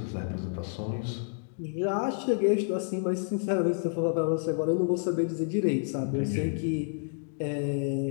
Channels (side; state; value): right; silent; digital silence